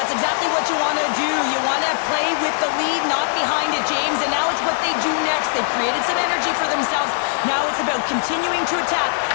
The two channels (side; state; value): right; silent; 62 dB below the other